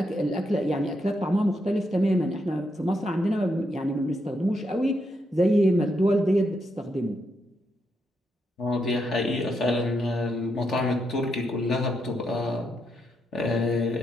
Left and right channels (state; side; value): normal; both; correlation 0.81